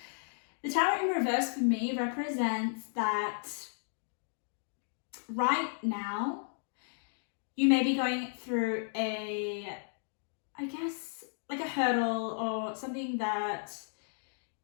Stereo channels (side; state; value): right; silent; digital silence